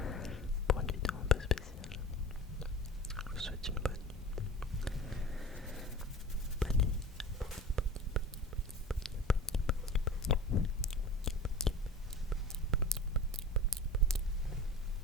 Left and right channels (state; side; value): normal; both; correlation 0.33